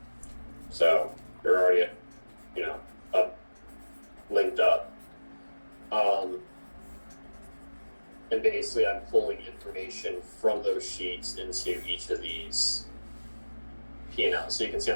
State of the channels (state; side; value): inverted; both; correlation -1.00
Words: So they're already, linked up. And basically I'm pulling information from those sheets into each of these P&Ls. So you can see